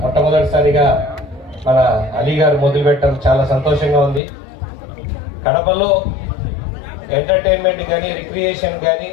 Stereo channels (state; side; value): drops out; right; at 4.2 s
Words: మన అలీ గారు మొదలుపెట్టడం చాలా సంతోషంగా ఉంది. కడపలో ఎంటర్టైన్మెంట్ కానీ రిక్రియేషన్ కానీ